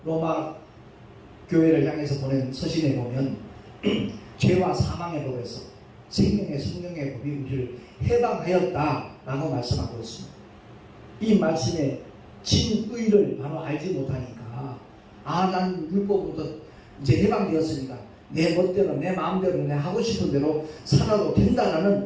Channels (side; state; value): both; identical; correlation 1.00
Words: 로마 교회를 향해서 보낸 서신에 보면 죄와 사망의 법에서 생명의 성령의 법이 우리를 해방하였다 라고 말씀하고 있습니다. 이 말씀에 진의를 바로 알지 못하니까 난 율법부터 이제 해방되었으니까 내 멋대로 내 마음대로 내 하고 싶은 대로 살아도